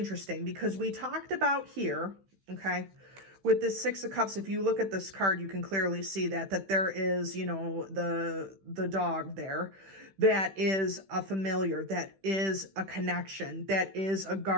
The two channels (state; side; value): late; left; 15 ms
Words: because we talked about here, okay? with this Six of Cups, if you look at this card, you can clearly see that there is, you know, the dog there. That is a familiar, that is a connection, that is a